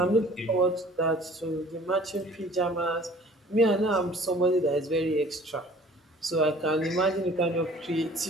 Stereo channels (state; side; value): normal; both; correlation 0.51